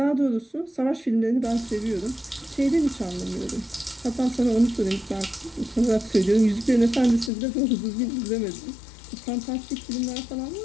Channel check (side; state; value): right; drops out; at 7.3 s